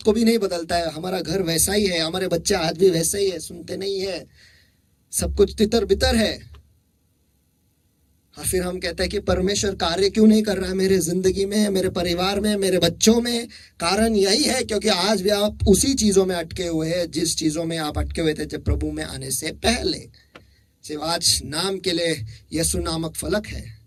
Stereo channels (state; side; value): identical; both; correlation 1.00